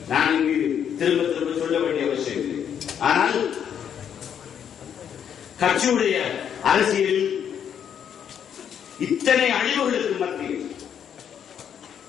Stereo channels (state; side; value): quieter; right; 8.6 dB